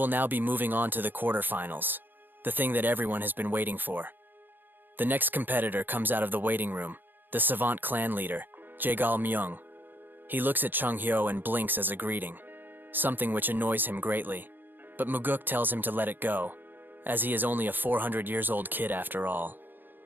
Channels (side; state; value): left; late; 0.092 ms